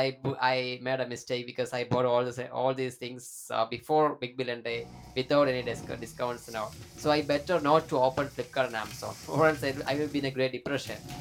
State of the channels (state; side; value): identical; both; correlation 1.00